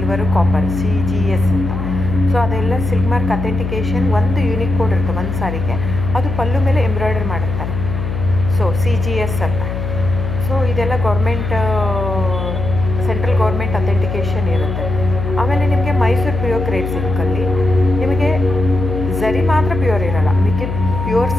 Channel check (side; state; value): left; noise; hum, 4 dB below the sound